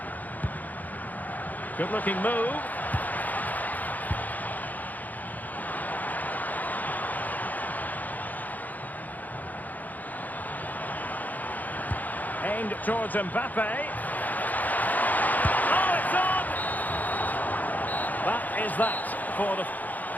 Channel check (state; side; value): late; right; 0.081 ms